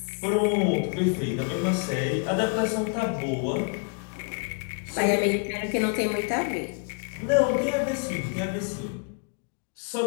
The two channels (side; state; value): right; quieter; 35.7 dB